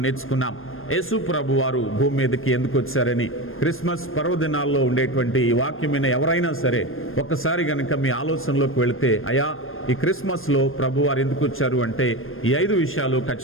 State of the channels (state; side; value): late; right; 0.60 ms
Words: నేర్చుకున్నాం. యేసు ప్రభు వారు భూమి మీదకి ఎందుకు వచ్చారని. క్రిస్మస్ పర్వదినాల్లో ఉండేటువంటి ఈ వాక్యమైన ఎవరైనా సరే ఒక్కసారి కనుక మీ ఆలోచనలోకి వెళితే, అయ్యా ఈ క్రిస్మస్లో ప్రభు వారు ఎందుకు వచ్చారు అంటే ఈ 5 విషయాలు